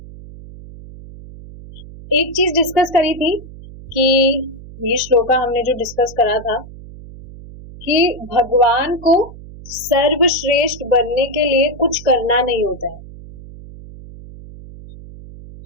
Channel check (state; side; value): noise; right; hum, 16 dB below the sound